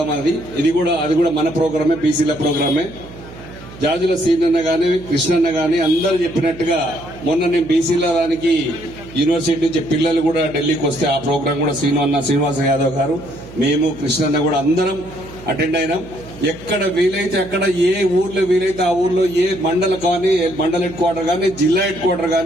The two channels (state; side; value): noise; right; hum, 17 dB below the sound